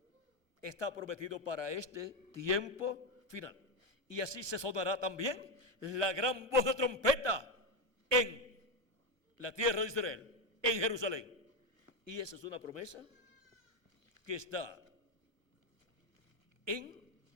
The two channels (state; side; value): late; left; 1.2 ms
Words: está prometido para este tiempo final. Y así se sonará también la gran voz de trompeta en la tierra de Israel, en Jerusalén. Y esa es una promesa que está en